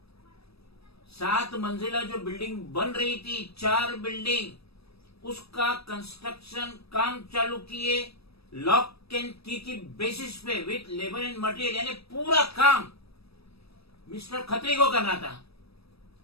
7 मंजिला जो बिल्डिंग बन रही थी, 4 बिल्डिंग, उसका कंस्ट्रक्शन काम चालू किए लॉक एंड की बेसिस पे विथ लेबर एंड मटेरियल, यानी पूरा काम मिस्टर खत्री को करना था।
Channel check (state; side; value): late; right; 0.78 ms